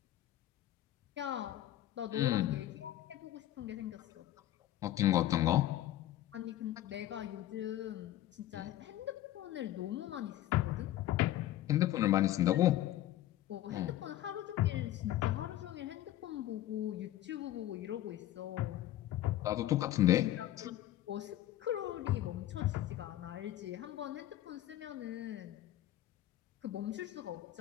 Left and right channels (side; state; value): right; quieter; 13.7 dB